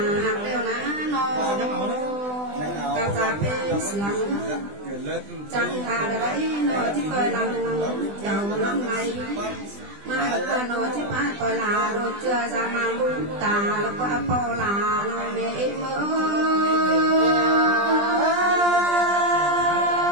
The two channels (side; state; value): left; late; 20 ms